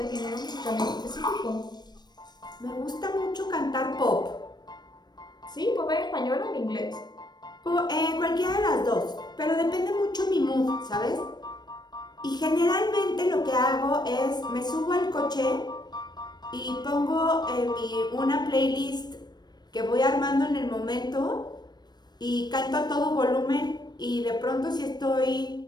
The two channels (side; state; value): right; late; 0.20 ms